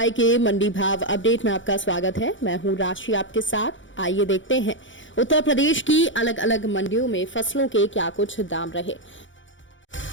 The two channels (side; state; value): right; late; 0.55 ms